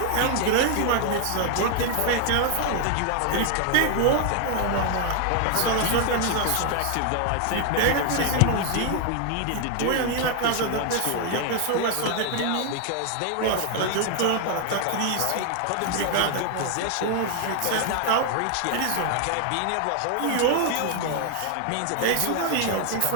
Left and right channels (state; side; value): different; both; correlation 0.00